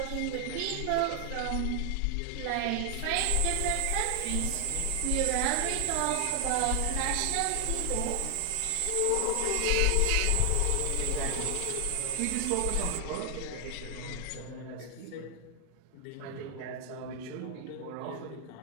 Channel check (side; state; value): both; different; correlation 0.00